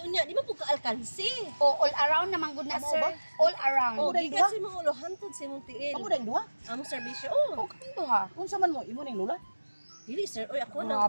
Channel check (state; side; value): inverted; both; correlation -1.00